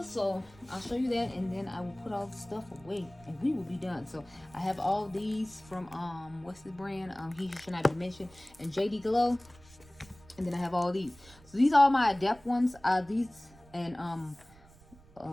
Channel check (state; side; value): noise; right; rumble, 24 dB below the sound